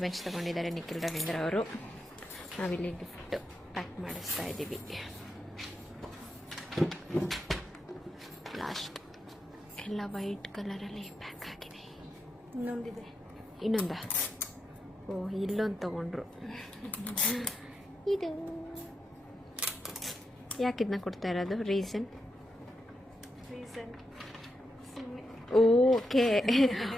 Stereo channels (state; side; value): normal; both; correlation 0.85